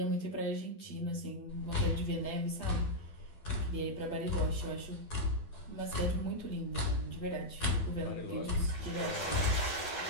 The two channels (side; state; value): right; late; 12 ms